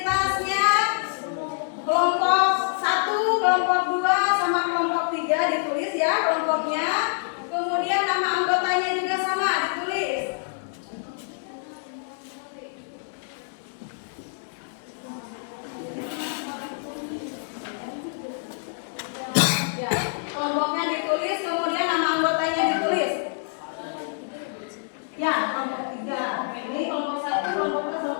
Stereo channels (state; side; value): silent; right; 61 dB below the other